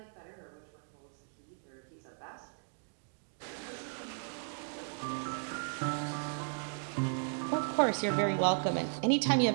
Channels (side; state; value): left; silent; digital silence